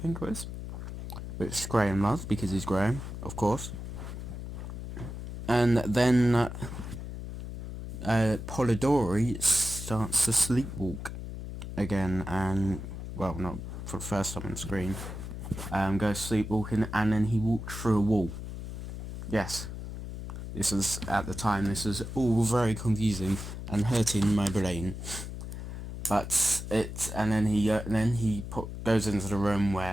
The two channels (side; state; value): left; noise; hum, 8 dB below the sound